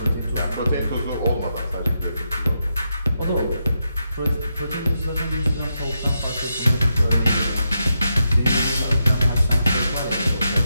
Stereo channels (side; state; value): both; inverted; correlation -0.84